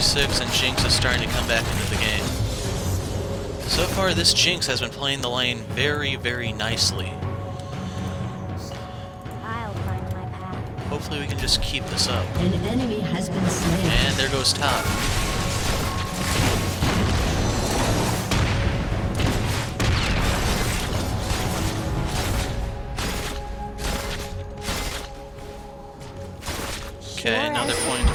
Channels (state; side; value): identical; both; correlation 1.00